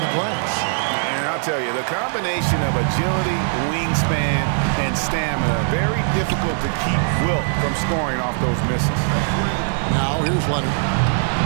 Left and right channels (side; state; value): left; silent; digital silence